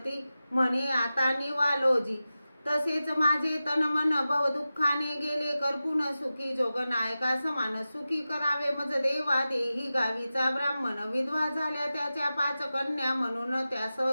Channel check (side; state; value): both; inverted; correlation -0.94